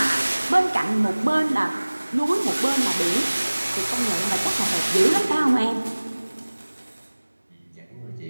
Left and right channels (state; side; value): inverted; both; correlation -1.00